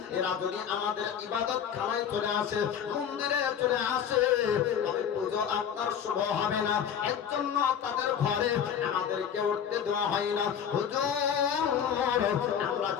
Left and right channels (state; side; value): quieter; right; 8.3 dB